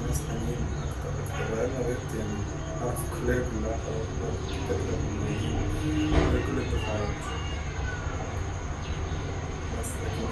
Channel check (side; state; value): both; identical; correlation 1.00